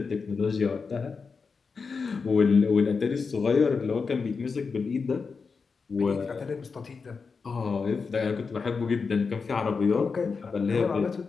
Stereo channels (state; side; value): quieter; right; 5.0 dB